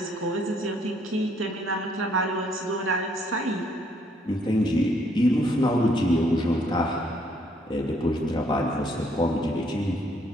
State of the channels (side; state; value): both; normal; correlation 0.68